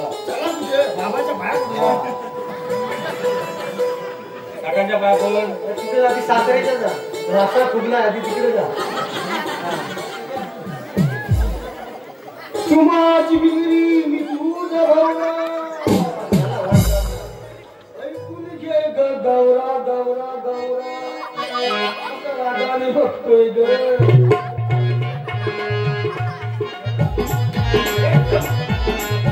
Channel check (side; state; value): both; identical; correlation 1.00